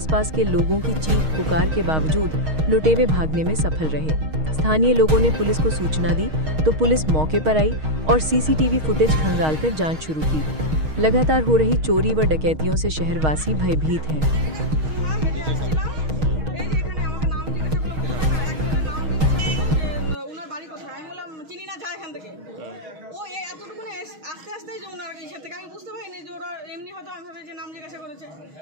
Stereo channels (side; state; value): left; late; 6.4 ms